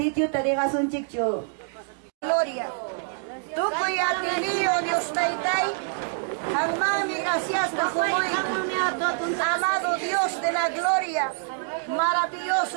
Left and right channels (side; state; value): left; silent; digital silence